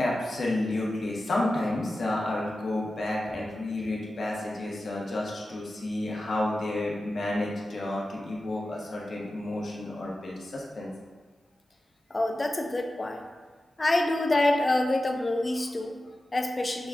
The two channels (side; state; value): both; normal; correlation 0.93